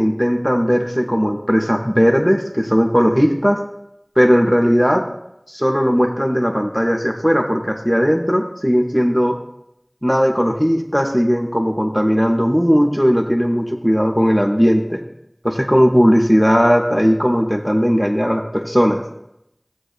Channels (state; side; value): identical; both; correlation 1.00